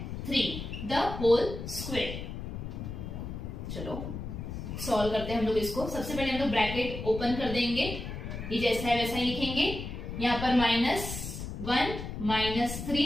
3 द होल स्क्वायर। चलो सॉल्व करते हैं हम लोग इसको। सबसे पहले हम लोग ब्रैकेट ओपन कर देंगे, ये जैसा है वैसा ही लिखेंगे, यहाँ पर -1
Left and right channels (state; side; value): noise; left; rumble, 7 dB below the sound